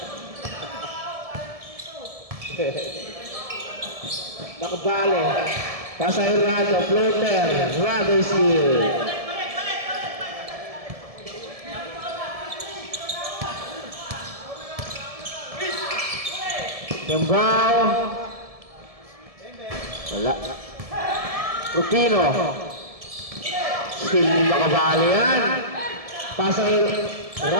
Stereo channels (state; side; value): late; left; 1.7 ms